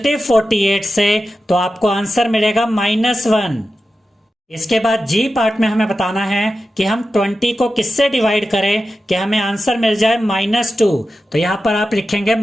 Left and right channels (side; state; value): both; normal; correlation 0.92